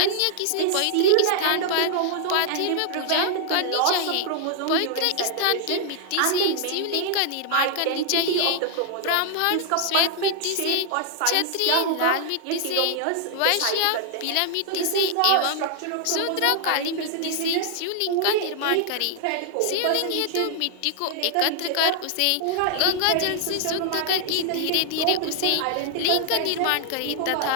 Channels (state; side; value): different; both; correlation 0.00